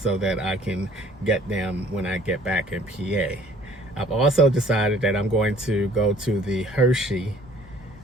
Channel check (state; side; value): normal; both; correlation 0.56